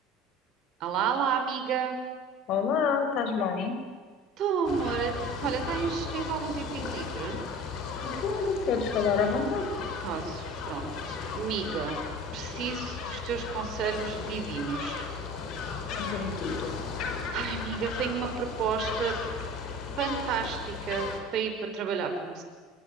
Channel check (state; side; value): normal; both; correlation 0.40